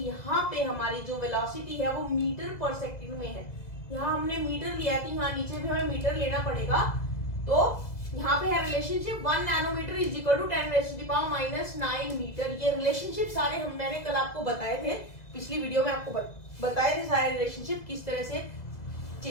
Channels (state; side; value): late; right; 2.0 ms